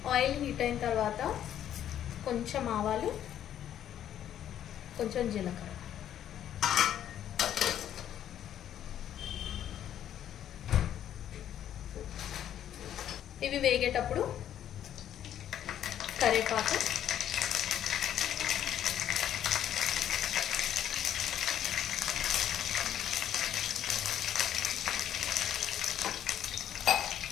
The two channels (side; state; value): right; quieter; 10.6 dB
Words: ఆయిల్ హీట్ అయిన తర్వాత కొంచెం ఆవాలు, కొంచెం జీలకర్ర. ఇవి వేగేటప్పుడు కరివేపాకు,